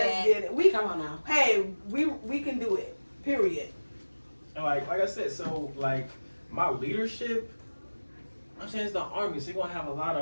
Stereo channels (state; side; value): inverted; both; correlation -1.00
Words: dad. get it. We Come on now. hey, we can do it. Period. And like I said, so like my leadership, I'm saying it's the army, so you're gonna have a lot